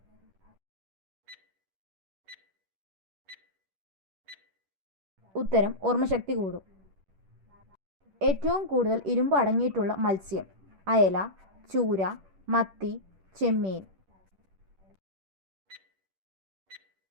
ഉത്തരം ഓർമ്മശക്തി കൂടും. ഏറ്റവും കൂടുതൽ ഇരുമ്പ് അടങ്ങിയിട്ടുള്ള മത്സ്യം: അയല, ചൂര, മത്തി, ചെമ്മീൻ.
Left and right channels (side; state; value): left; late; 10 ms